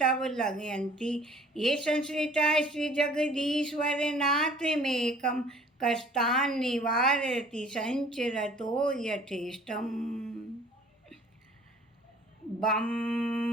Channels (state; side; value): normal; both; correlation 0.53